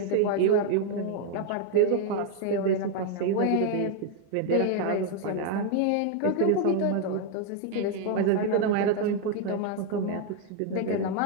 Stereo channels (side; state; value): both; different; correlation 0.00